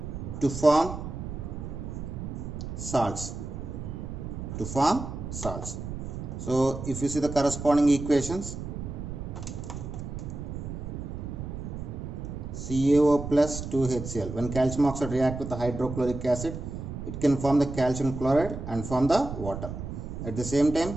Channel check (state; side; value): noise; right; rumble, 7 dB below the sound